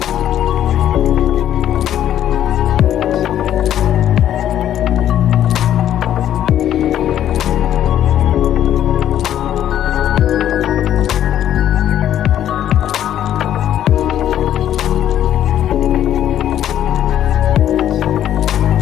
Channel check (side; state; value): right; quieter; 11.1 dB